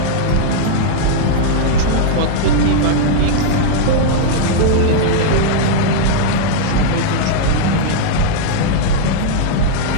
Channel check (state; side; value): different; both; correlation -0.01